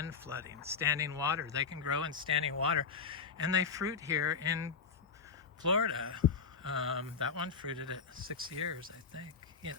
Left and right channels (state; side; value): quieter; right; 5.6 dB